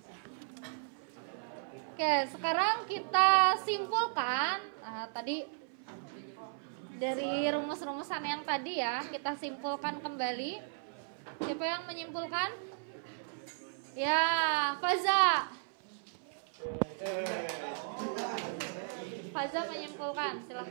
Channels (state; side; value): silent; left; 54 dB below the other